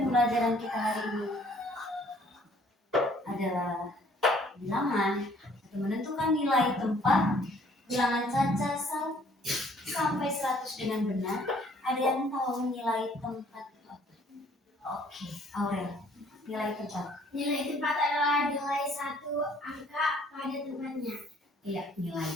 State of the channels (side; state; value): both; normal; correlation 0.60